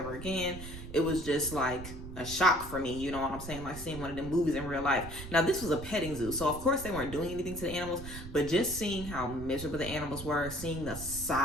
again. It was just like a shock for me, you know what I'm saying? Like seeing one of them movies in real life. Now this was a petting zoo, so of course they weren't doing anything to the animals, but just seeing how miserable the animals were, seeing the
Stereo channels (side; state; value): right; noise; rumble, 11 dB below the sound